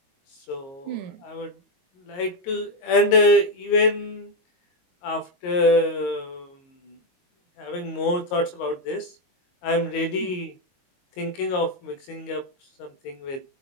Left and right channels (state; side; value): late; right; 22 ms